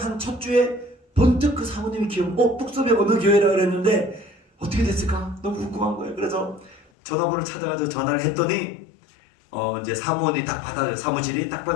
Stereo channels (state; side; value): drops out; right; at 6.9 s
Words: 한 첫 주에 번뜩 그 사모님이 뚝섬에 어느 교회라 그랬는데 어떻게 됐을까? 너무 궁금한 거예요. 그래서 전화번호를 찾아가지고 전화를 했더니 이제 사무원이 딱 받아요. 사무실이 딱